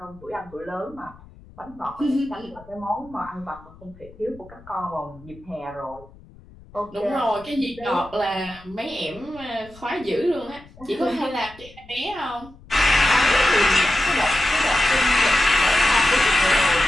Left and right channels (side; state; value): left; noise; rumble, 23 dB below the sound